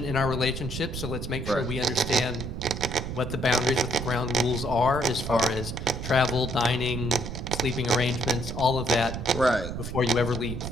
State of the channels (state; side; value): noise; right; rumble, 6 dB below the sound